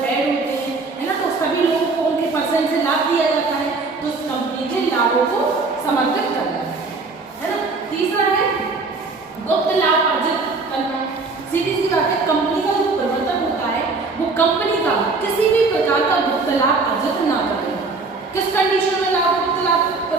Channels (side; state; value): left; quieter; 3.9 dB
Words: ऐड होते हैं, है ना। तो सभी लोगों को उनके % से लाभ दिया जाता है, तो उस कंपनी के लाभों को समर्पित करना है ना। तीसरा है गुप्त लाभ अर्जित करना। सीधी सी बात है, कंपनी का जो प्रवर्तक होता है वो कंपनी का किसी भी प्रकार का गुप्त लाभ अर्जित ना करे। किस कंडीशन में गुप्त लाभ